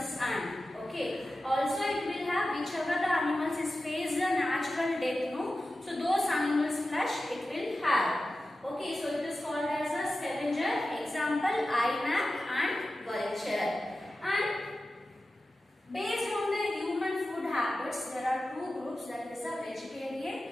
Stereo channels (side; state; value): both; normal; correlation 0.94